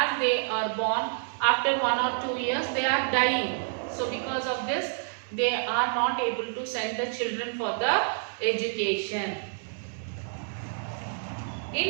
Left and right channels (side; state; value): left; silent; digital silence